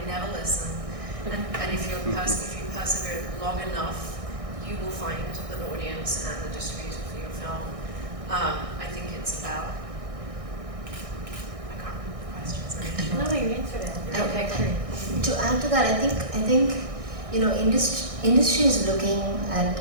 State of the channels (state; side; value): late; left; 1.6 ms